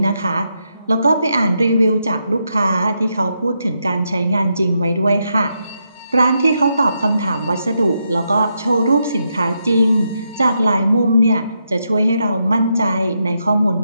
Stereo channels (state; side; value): inverted; both; correlation -0.82